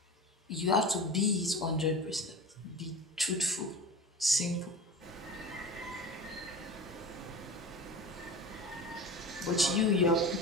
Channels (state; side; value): normal; both; correlation 0.31